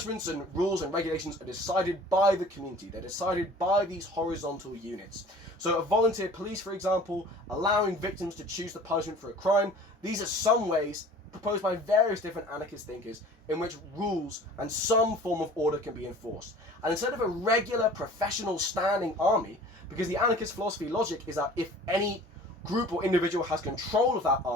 and rules and regulations are decided by the community. They're decided by these horizontal units. So a volunteer police, for example, allowing victims to choose the punishment for a crime. These are some ways proposed by various different anarchist thinkers in which rules and some form of order can be enforced. And instead of a regular professional standing army, because the anarchist philosophy logic is that if any group or individual has control of that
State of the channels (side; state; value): both; normal; correlation 0.46